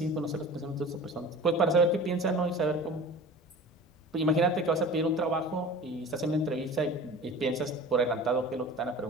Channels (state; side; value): normal; both; correlation 0.39